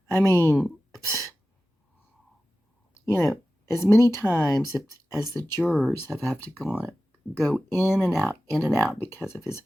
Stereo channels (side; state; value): both; normal; correlation 0.95